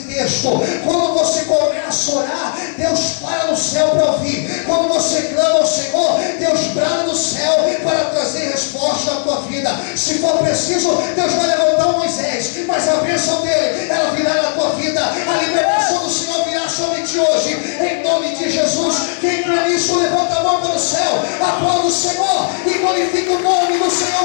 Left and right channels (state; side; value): silent; right; 61 dB below the other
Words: texto. Quando você começa a orar, Deus para no céu para ouvir. Quando você clama ao Senhor, Deus brada no céu para trazer resposta à tua vida. Se for preciso, Deus vai levantar um Moisés, mas a bênção dele, ela virá na tua vida. A libertação do Senhor virá sobre ti hoje, em nome de Jesus. Quem crê nisso, levanta a mão para o céu, aplauda o Senhor e glorifica o nome do